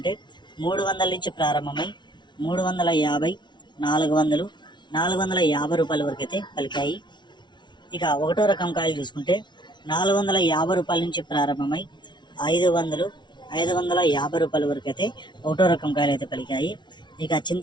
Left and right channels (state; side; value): late; right; 0.22 ms